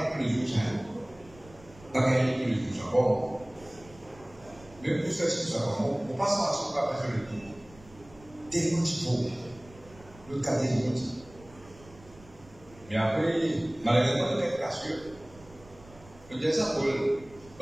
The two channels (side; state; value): right; noise; rumble, 23 dB below the sound